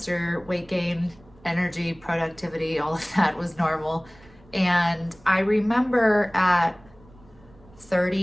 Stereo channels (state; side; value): noise; right; rumble, 26 dB below the sound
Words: weight gain, energy, productivity, all of that was normal. And I remember at